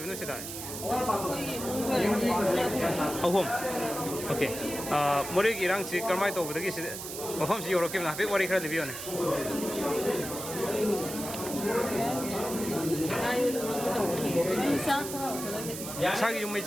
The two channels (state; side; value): noise; right; hiss, 8 dB below the sound